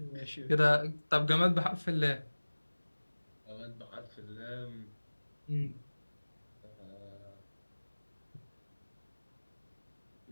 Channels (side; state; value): both; inverted; correlation -1.00